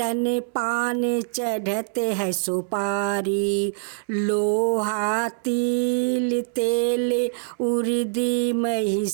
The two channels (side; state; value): left; silent; 63 dB below the other